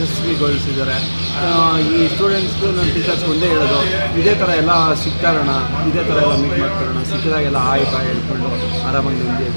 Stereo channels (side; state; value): both; inverted; correlation -1.00